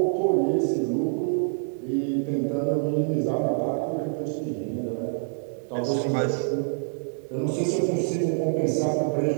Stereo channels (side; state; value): left; silent; digital silence